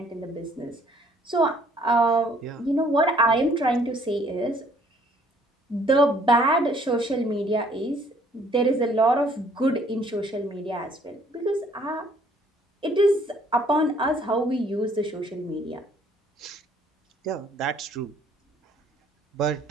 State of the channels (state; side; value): normal; both; correlation 0.61